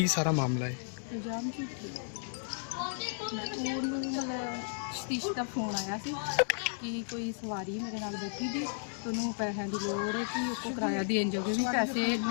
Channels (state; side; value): silent; right; digital silence